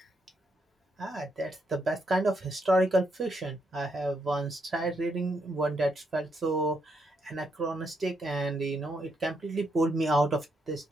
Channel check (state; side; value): normal; both; correlation 0.78